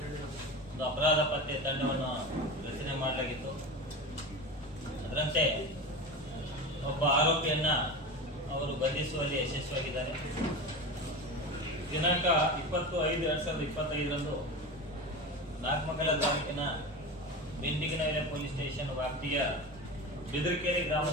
ಒಂದು ಅಪರಾಧ ಪತ್ತೆ ತಂಡವನ್ನು ರಚನೆ ಮಾಡಲಾಗಿತ್ತು. ಅದರಂತೆ ಒಬ್ಬ ಆರೋಪಿಯನ್ನ ಅವರು ಬಂಧಿಸುವಲ್ಲಿ ಯಶಸ್ವಿಯಾಗಿದ್ದಾರೆ. ದಿನಾಂಕ 20/5/2025 ನಾಗಮಂಗಲ ತಾಲೂಕಿನ ಬಿಂಡಿಗನಹಳ್ಳಿ ಪೊಲೀಸ್ ಸ್ಟೇಷನ್ ವ್ಯಾಪ್ತಿಯ ಬಿದರಕೆರೆ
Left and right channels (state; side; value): noise; right; rumble, 21 dB below the sound